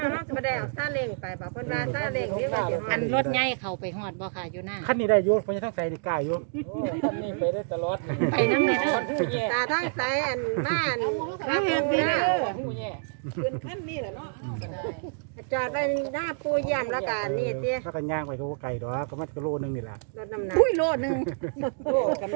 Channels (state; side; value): silent; left; digital silence